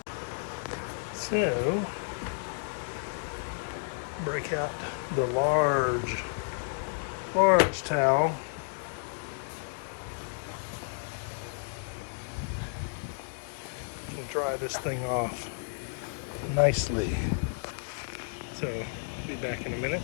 So break out the large towel. And dry this thing off nicely. So I'll be back in a minute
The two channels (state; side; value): silent; right; digital silence